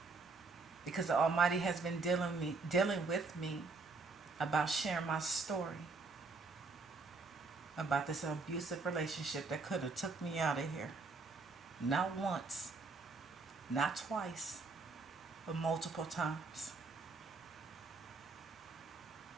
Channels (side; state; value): left; quieter; 4.0 dB